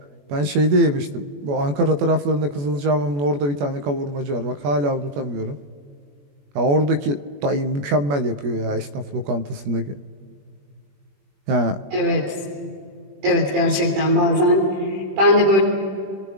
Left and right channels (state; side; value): late; left; 21 ms